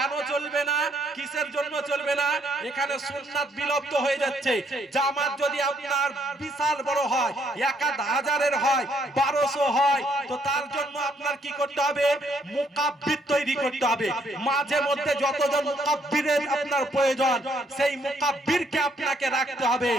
চলবে না? কিসের জন্য চলবে না? এখানে সুন্নাত বিলুপ্ত হয়ে যাচ্ছে। জামাত যদি আপনার বিশাল বড় হয়, 1000-এর হয়, 1200 হয়, তো তার জন্য আপনার কি করতে হবে? মুকাব্বির তৈরি করতে হবে। মাঝে মধ্যে যতজন মুকাব্বিরের আপনার প্রয়োজন, সেই মুকাব্বিরকে আপনাকে রাখতে হবে।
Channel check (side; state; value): both; normal; correlation 0.70